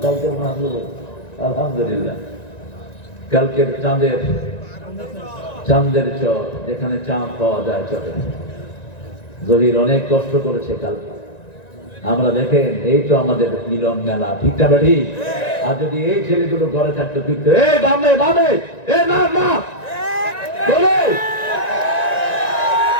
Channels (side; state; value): right; late; 1.9 ms